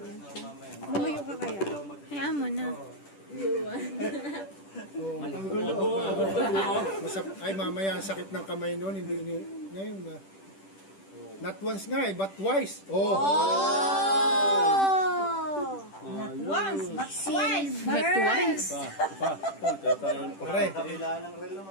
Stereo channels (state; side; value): late; right; 10 ms